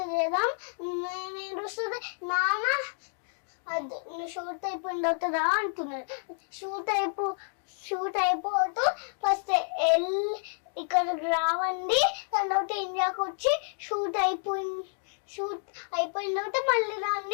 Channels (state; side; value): silent; right; digital silence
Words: చేద్దాం నేను వస్తుంది నాన్న. అది నువ్వు షూట్ అయిపోయిన తర్వాత రా అంటున్నారు. షూట్ అయిపోతూ ఫస్ట్ ఇక్కడికి రావండి, దాని తర్వాత ఇండియాకి వచ్చి షూట్ అయిపోయిన తర్వాత మళ్ళీ